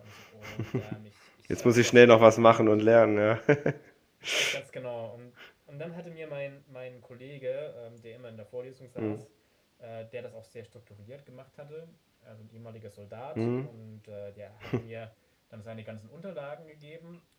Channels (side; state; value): both; identical; correlation 1.00